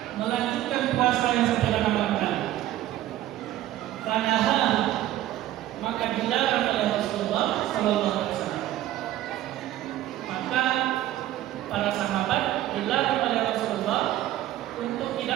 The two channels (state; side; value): quieter; left; 13.9 dB